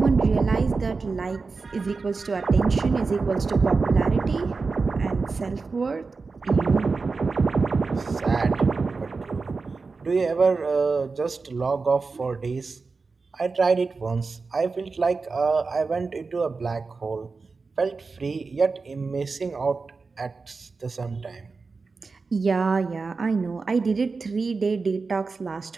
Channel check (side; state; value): left; quieter; 4.3 dB